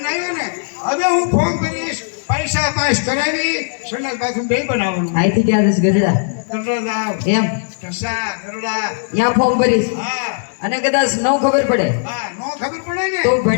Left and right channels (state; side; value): silent; right; digital silence